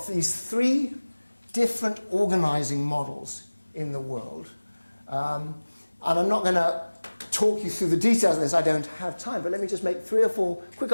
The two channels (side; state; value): both; inverted; correlation -1.00